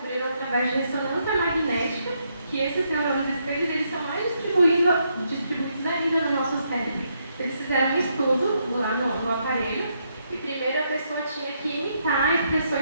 através de ressonância magnética que esses neurônios espelhos eles são mais distribuídos ainda no nosso cérebro. Eles fizeram um estudo lá no aparelho e primeiro a pessoa tinha que imitar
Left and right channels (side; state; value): both; inverted; correlation -0.77